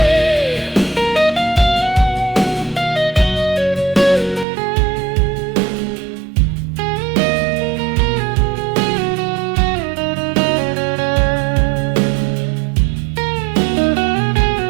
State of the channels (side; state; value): left; drops out; at 4.5 s